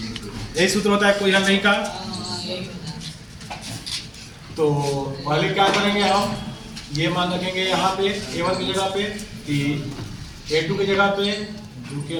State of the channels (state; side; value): identical; both; correlation 1.00